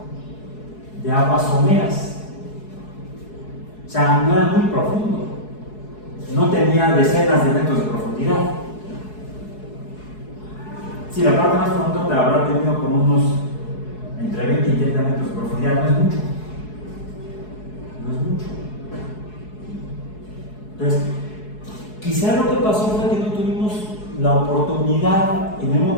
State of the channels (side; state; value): right; late; 4.7 ms